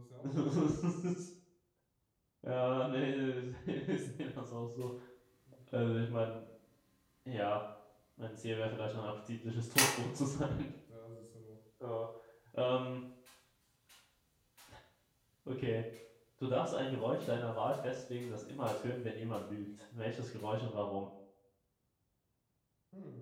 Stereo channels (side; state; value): both; identical; correlation 1.00